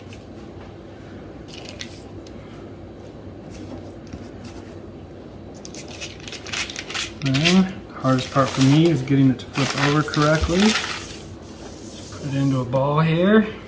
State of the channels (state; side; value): identical; both; correlation 1.00